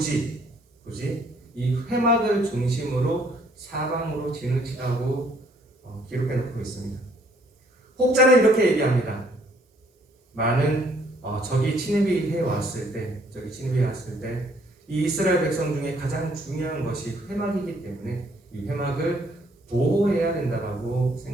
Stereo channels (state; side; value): normal; both; correlation 0.65